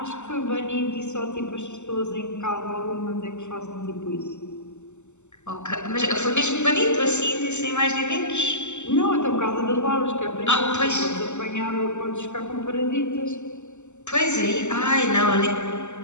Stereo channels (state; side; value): late; right; 0.83 ms